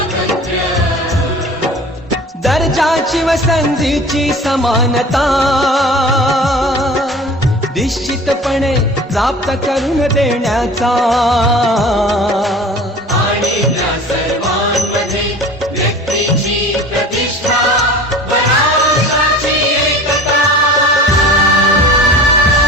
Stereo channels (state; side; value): normal; both; correlation 0.41